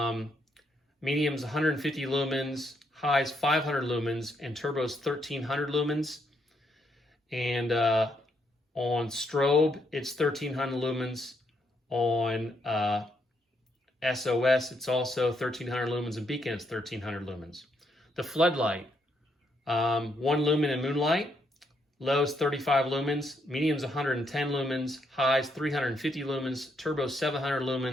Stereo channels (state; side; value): normal; both; correlation 0.76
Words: medium's 150 lumens, highs 500 lumens, and turbo's 1300 lumens. And on strobe, it's 1300 lumens. On SOS, it's also 1300 lumens, and beacon, it's 1300 lumens. The floodlight, 1 lumen in moonlight, lows 35 lumens, mediums 110 lumens, highs 350 lumens, turbo 700